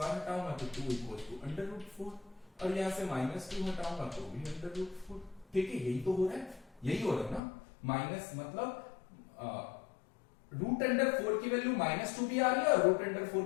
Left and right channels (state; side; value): drops out; right; at 7.4 s